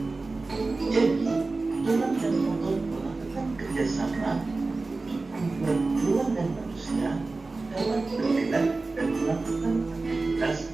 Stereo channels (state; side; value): quieter; left; 3.5 dB